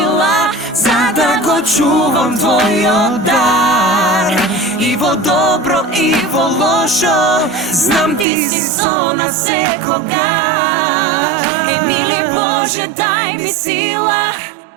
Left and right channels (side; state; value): left; drops out; at 8.2 s